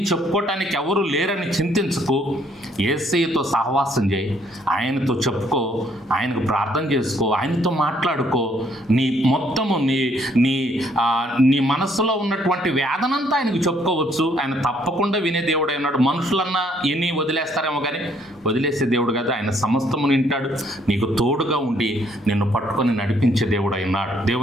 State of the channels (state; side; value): normal; both; correlation 0.67